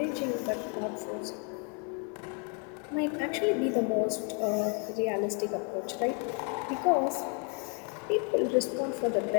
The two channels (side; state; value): right; quieter; 37.6 dB